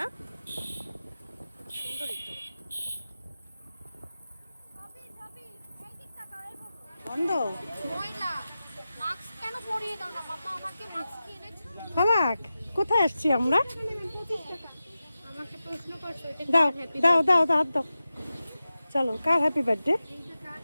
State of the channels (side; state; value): both; inverted; correlation -0.93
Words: সুন্দরই তো। বন্ধ ফালাক, কোথায় আসছি আমরা? দাও দাও দাও দাও, হাত দাও। চলো, কার হ্যাপি বার্থডে?